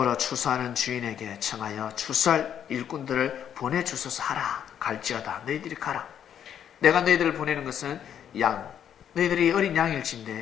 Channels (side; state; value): right; quieter; 9.2 dB